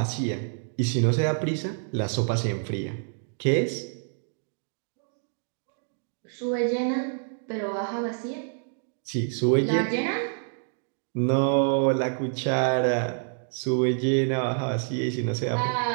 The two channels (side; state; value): left; silent; 60 dB below the other